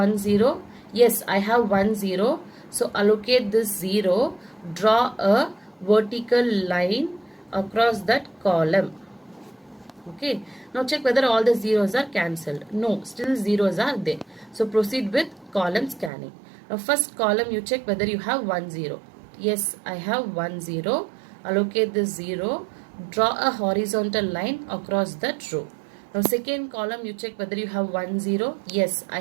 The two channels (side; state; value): left; drops out; at 16.1 s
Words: 0. Yes, I have 1, 0. So allocate this 0. Draw a vertical line across that column. Okay. Now check whether all the zeros are cancelled. No, still zeros are there. So proceed with column scanning. Now first column you check whether you have 1, 0. Yes, I have 1, 0. Allocate this 0. Draw a horizontal line across that row. Now second column you check whether you have 1, 0. Yes, I